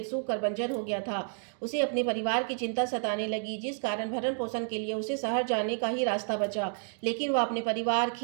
सूख कर बंजर हो गया था। उसे अपने परिवार की चिंता सताने लगी, जिस कारण भरण पोषण के लिए उसे शहर जाने का ही रास्ता बचा। लेकिन वह अपने परिवार,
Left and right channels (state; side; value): silent; left; 58 dB below the other